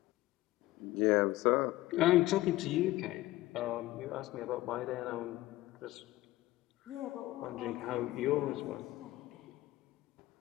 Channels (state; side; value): quieter; right; 17.4 dB